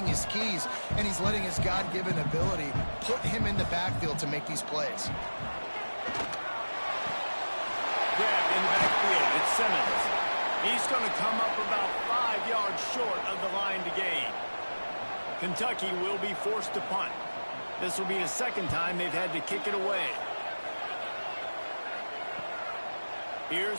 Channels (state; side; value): inverted; both; correlation -1.00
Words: his keys, and he's letting his God-given ability put him in the backfield to make these plays. Grab in the backfield. It's Simmons. He's going to come up about 5 yards short of the line to gain. Kentucky will be forced to punt. This will be the 2nd time they've had to kick it away.